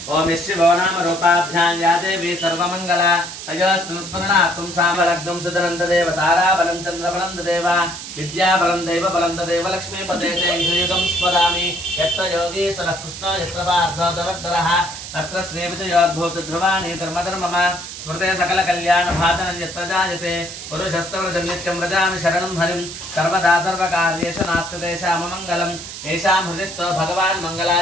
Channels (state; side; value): noise; right; hiss, 10 dB below the sound